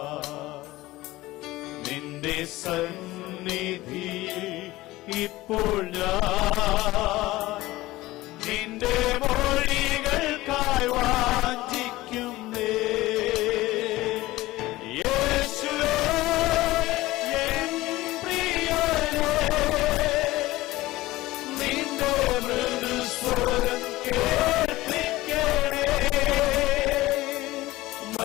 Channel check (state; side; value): quieter; right; 18.1 dB